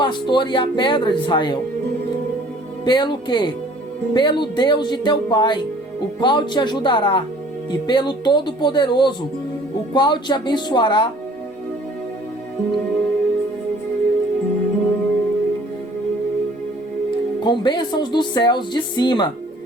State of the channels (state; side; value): normal; both; correlation 0.54